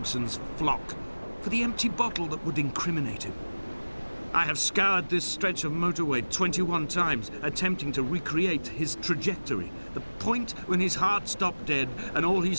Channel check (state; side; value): inverted; both; correlation -1.00